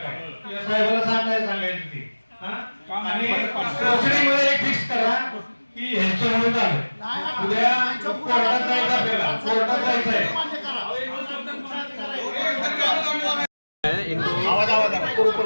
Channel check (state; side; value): inverted; both; correlation -1.00